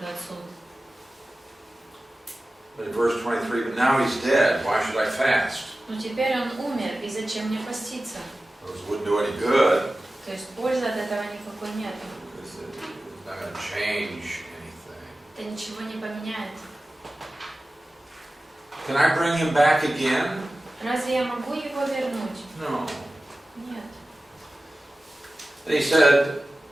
суд. But in verse 23, but now he's dead, why should I fast? Но теперь он умер, и зачем мне поститься? It wouldn't do any good. То есть пользы от этого никакой нет. It's not going to change anything. Это ничего не поменяет. Can I bring him back again? Разве я могу его вернуть? No. Нет. And he said,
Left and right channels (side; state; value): both; normal; correlation 0.95